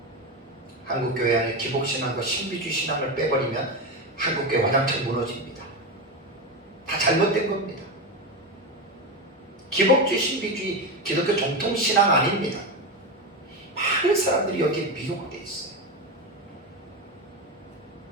한국교회 안에 기복신앙과 신비주의 신앙을 빼버리면 한국교회 완전히 무너집니다. 다 잘못된 겁니다. 기복주의, 신비주의, 기독교 정통신앙 아닙니다. 많은 사람들이 여기에 미혹되어 있어요.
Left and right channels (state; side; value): normal; both; correlation 0.16